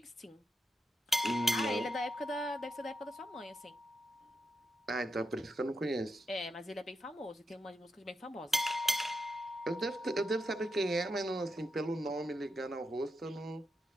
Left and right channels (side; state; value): both; normal; correlation 0.85